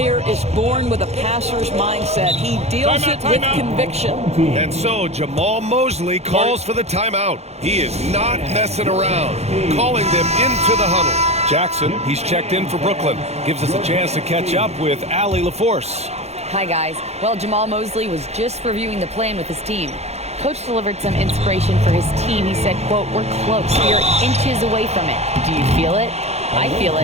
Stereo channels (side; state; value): left; late; 0.31 ms